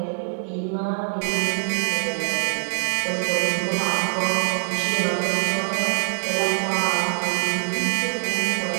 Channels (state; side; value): silent; left; 63 dB below the other